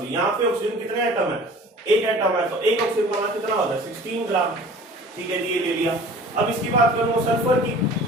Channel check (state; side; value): normal; both; correlation 0.45